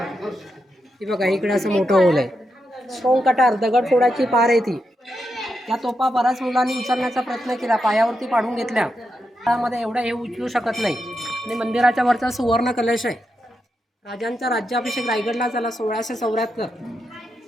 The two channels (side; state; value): both; normal; correlation 0.85